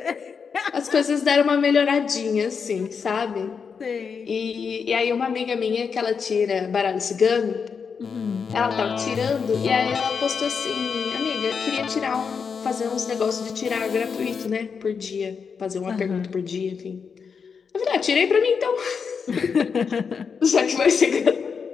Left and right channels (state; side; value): quieter; right; 6.0 dB